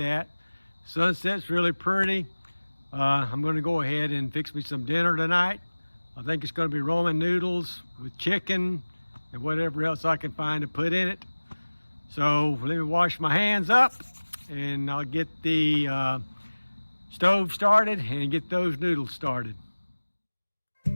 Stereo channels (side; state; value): both; inverted; correlation -1.00